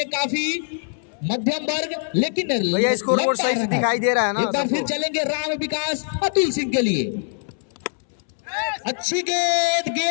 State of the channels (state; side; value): silent; right; 64 dB below the other